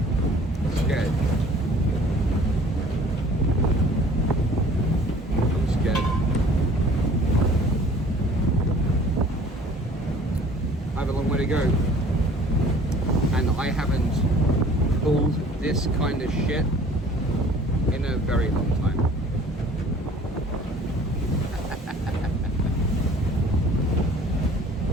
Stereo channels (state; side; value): normal; both; correlation 0.51